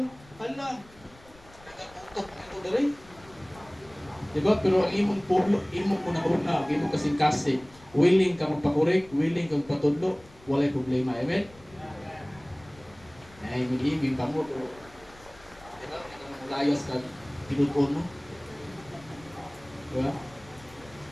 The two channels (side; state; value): left; noise; rumble, 24 dB below the sound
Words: Hala, nagaputok ito dali. Diba? Pero ang imong pulo, imong una-una, ang imong kasing-kasing, willing ka magpakorek, willing ka magpatudlo, walay problema. Amen? Ay, mag-ibig pa mo. Diba? Layas ka, tinutun mo. Diba?